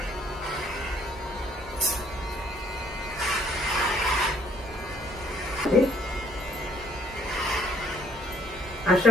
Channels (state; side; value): normal; both; correlation 0.63